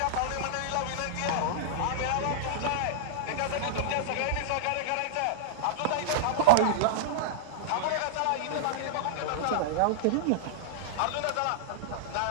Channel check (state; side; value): different; both; correlation -0.02